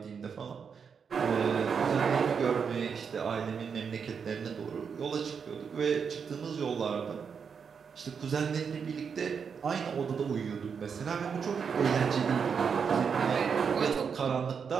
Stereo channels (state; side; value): quieter; left; 6.4 dB